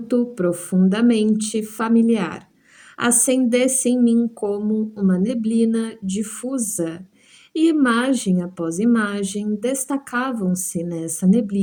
profundamente familiar, acendesse em mim como uma neblina difusa, e imagem após imagem destacavam-se nessa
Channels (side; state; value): both; identical; correlation 1.00